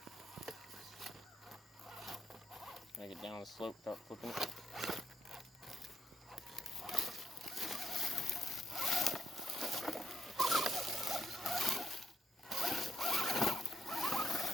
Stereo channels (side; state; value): both; normal; correlation 0.74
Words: I get down the slope, start flipping it.